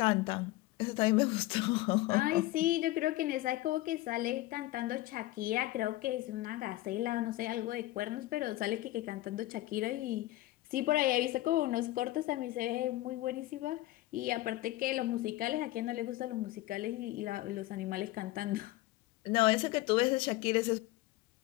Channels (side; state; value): right; quieter; 17.5 dB